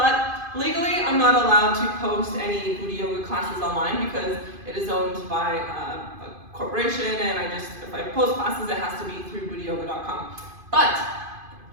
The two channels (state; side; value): late; left; 2.5 ms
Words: legally, I'm not allowed to post any Buti Yoga classes online because it is owned by a corporation, and if I post classes, it has to be through butiyoga.com. But